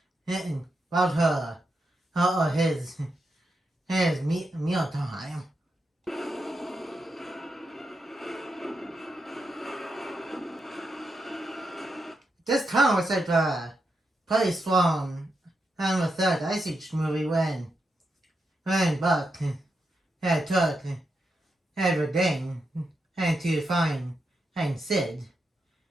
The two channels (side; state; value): both; normal; correlation 0.85